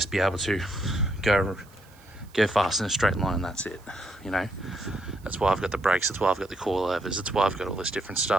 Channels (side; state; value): right; noise; hiss, 28 dB below the sound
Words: be able to go fast in a straight line and that's it, you know. That's why I've got the brakes, that's why I've got the coilovers, that's why I've got all this different